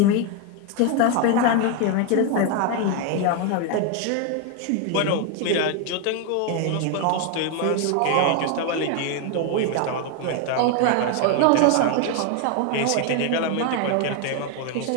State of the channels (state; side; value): different; both; correlation 0.01